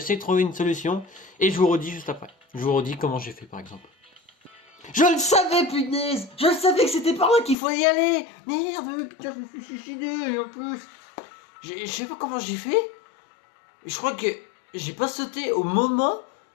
de trouver une solution et je vous redis juste après. Je vous redis comment j'ai fait par exemple. Je le savais, punaise! Je le savais que c'était par là qu'il faut y aller! Merde, putain, je me suis suicidé en plus! Je sais pas comment j'ai fait. Je crois que j'ai pas sauté au moment.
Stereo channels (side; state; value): right; drops out; at 7.6 s